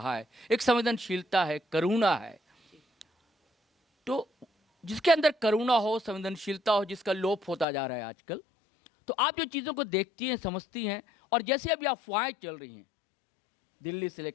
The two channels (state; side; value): drops out; right; at 7.7 s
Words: है, एक संवेदनशीलता है, करुणा है। तो जिसके अंदर करुणा हो, संवेदनशीलता हो, जिसका लोप होता जा रहा है आजकल, तो आप जो चीज़ों को देखती हैं, समझती हैं, और जैसे अभी अफवाहें चल रही हैं दिल्ली से